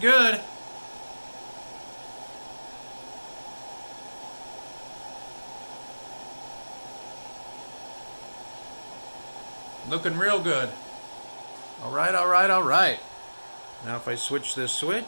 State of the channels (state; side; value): inverted; both; correlation -1.00